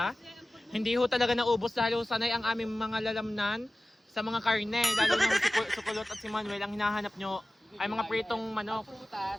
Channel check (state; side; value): normal; both; correlation 0.96